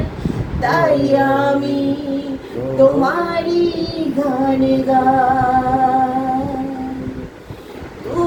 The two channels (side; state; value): both; identical; correlation 1.00